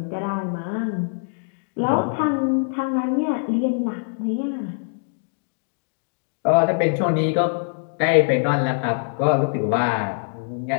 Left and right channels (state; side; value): silent; right; digital silence